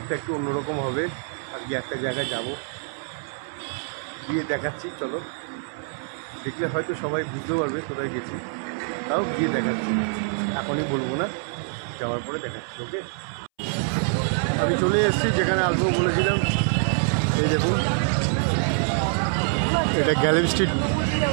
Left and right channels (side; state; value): left; silent; 62 dB below the other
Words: একটু অন্যরকম হবে। আজকে একটা জায়গায় যাব, গিয়ে দেখাচ্ছি। চলো, দেখলে হয়তো সবাই বুঝতে পারবে কোথায় গেছি, তাও গিয়ে দেখাচ্ছি। এখনই বলবো না, যাওয়ার পরে দেখাচ্ছি। ওকে, আমি চলে এসেছি যেখানে আসবো বলেছিলাম। এই দেখুন, এটা গ্যালেরি স্ট্রিট